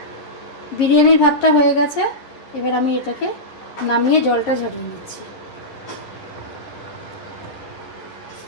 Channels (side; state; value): right; late; 11 ms